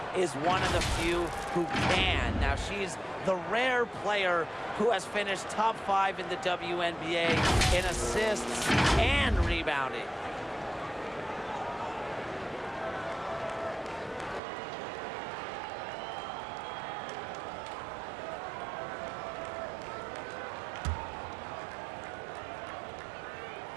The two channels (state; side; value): drops out; left; at 14.4 s